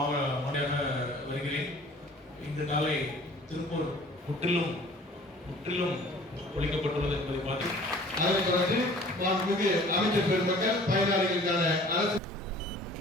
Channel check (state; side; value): normal; both; correlation 0.49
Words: வருகிறேன். இந்த நாளை திருப்பூர் முற்றிலும் ஒழிக்கப்பட்டுள்ளது என்பதை பார்த்து அதனைத் தொடர்ந்து மாண்புமிகு அமைச்சர் பெருமக்கள் பயனாளிகளுக்கான அரசு